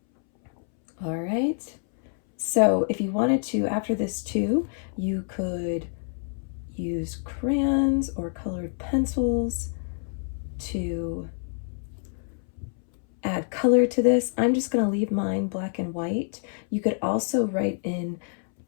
All right. So if you wanted to, after this too, you could use crayons or colored pencils to add color to this. I'm just going to leave mine black and white. You could also write in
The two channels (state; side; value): silent; right; 60 dB below the other